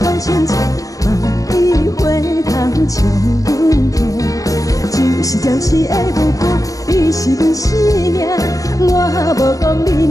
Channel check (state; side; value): late; right; 0.17 ms